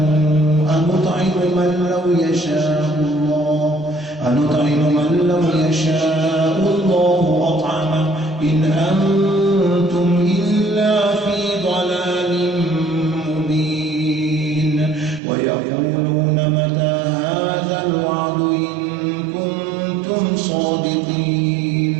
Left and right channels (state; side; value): drops out; left; at 15.2 s